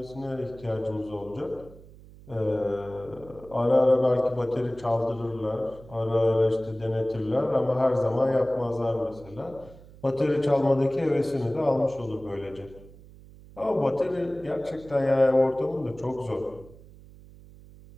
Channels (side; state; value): right; noise; hum, 21 dB below the sound